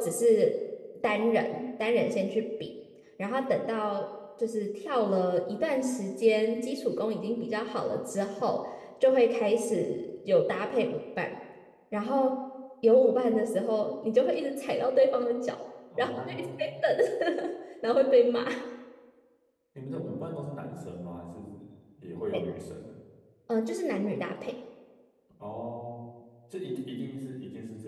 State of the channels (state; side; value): identical; both; correlation 1.00